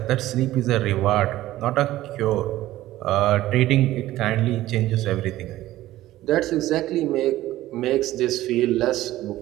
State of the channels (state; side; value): quieter; left; 15.4 dB